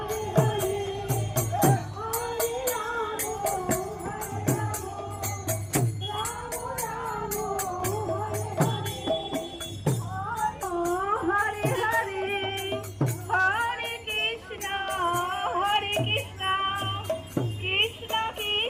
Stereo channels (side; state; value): both; identical; correlation 1.00